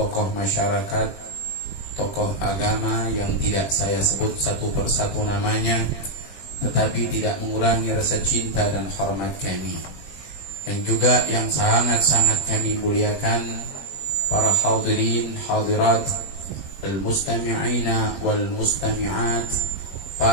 masyarakat, tokoh agama yang tidak saya sebut satu persatu namanya, tetapi tidak mengurangi rasa cinta dan hormat kami. Yang juga yang sangat-sangat kami muliakan para hadirin, hadirat, al-mustami'ina wal-mustami'at,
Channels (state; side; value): late; right; 20 ms